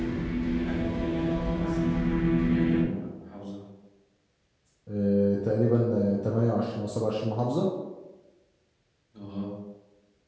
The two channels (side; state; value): both; identical; correlation 1.00